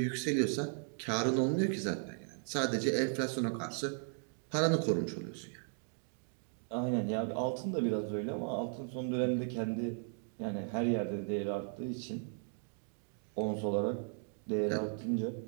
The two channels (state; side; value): silent; left; 54 dB below the other